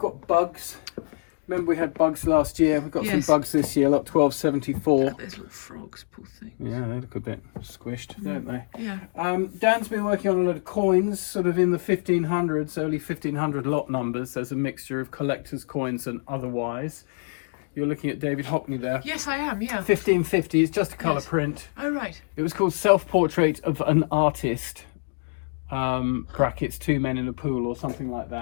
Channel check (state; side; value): silent; right; digital silence